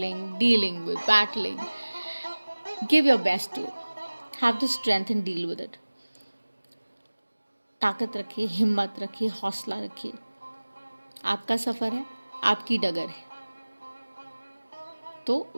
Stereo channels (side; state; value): both; inverted; correlation -1.00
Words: dealing with, battling. Give your best to it. Have the strength and deal with it. ताकत रखिए, हिम्मत रखिए, हौसला रखिए. आपका सफ़र है, आपकी डगर है, तो